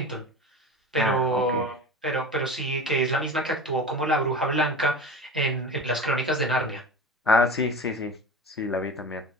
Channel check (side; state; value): both; normal; correlation 0.33